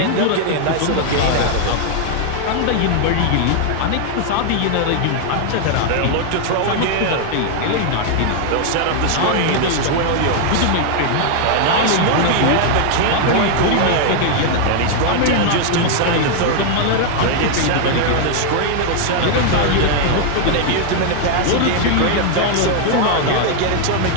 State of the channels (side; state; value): both; different; correlation 0.00